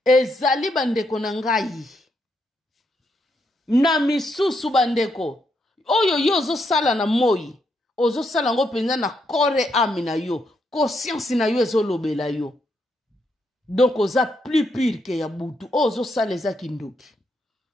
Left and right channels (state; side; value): normal; both; correlation 0.78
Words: ezali bandeko na ngai na misusu bandeko oyo yo ozosala na moi ozosala ngo penza na corps âme na yo conscience na yo ezolobela yo donc oza plus pire ke ya butu ozosala ezaki ndoki